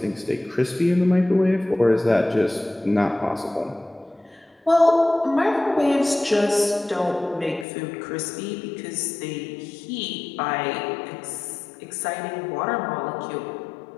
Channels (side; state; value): right; drops out; at 7.7 s